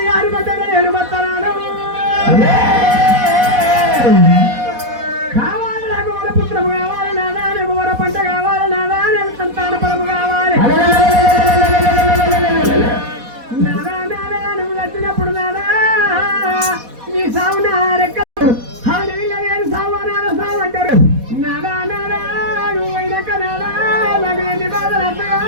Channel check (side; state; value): left; late; 4.1 ms